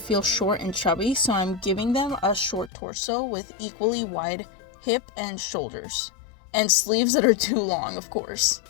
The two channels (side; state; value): right; drops out; at 2.7 s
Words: short and chubby, so I'm giving them a short torso with equally wide hip and shoulders. And sleeves that are too long, of course.